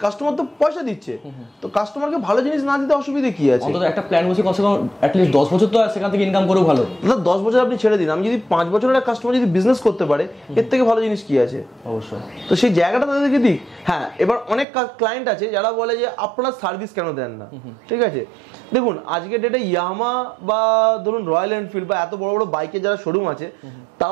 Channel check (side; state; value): left; drops out; at 14.7 s